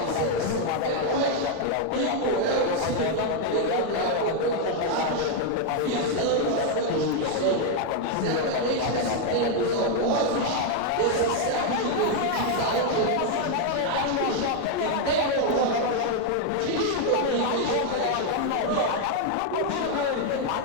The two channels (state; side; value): different; both; correlation 0.01